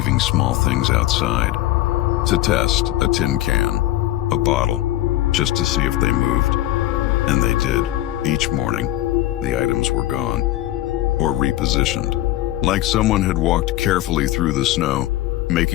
small things outside. To test, a tin can, a bottle, just to see if they moved. And they did. Each morning, the items were gone, or repositioned, like someone had walked carefully through the snow,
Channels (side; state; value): right; quieter; 14.9 dB